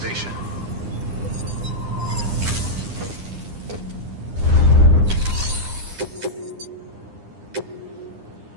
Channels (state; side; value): late; left; 9.8 ms